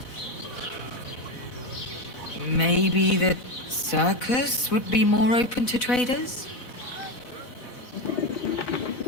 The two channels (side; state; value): right; late; 4.1 ms